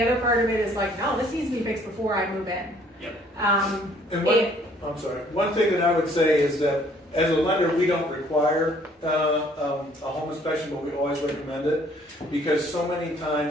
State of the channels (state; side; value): normal; both; correlation 0.60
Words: other part of it is like, no, this needs to be fixed before I move in. Yep. I'm sorry. One thing that I would say is that as a lender, we don't require a home inspection, but we always recommend it, because so many